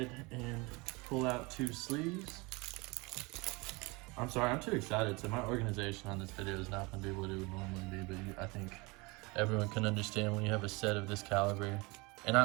and pull out 2 sleeves. I'm sorry, I'm too excited. So my organization on this video is not going to be what it would normally be, but I think everyone can understand when you have a set of this caliber. And I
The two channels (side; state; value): left; quieter; 25.9 dB